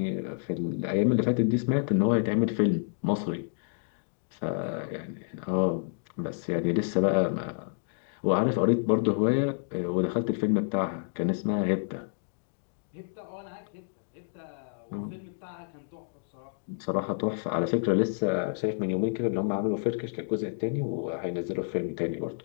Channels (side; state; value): right; silent; digital silence